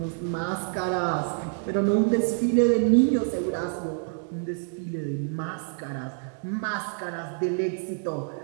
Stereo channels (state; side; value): silent; left; 60 dB below the other